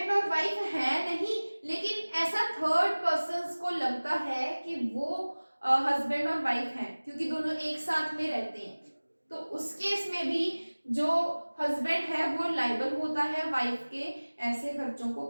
और वाइफ है नहीं, लेकिन ऐसा थर्ड पर्सन को लगता है कि वो हस्बैंड और वाइफ हैं क्योंकि दोनों एक साथ में रहते हैं, तो उस केस में भी जो हस्बैंड है वो लायबल होता है वाइफ के ऐसे खर्चों को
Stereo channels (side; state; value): both; inverted; correlation -1.00